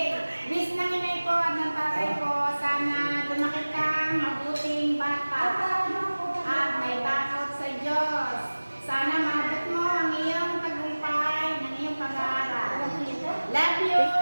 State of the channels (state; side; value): inverted; both; correlation -1.00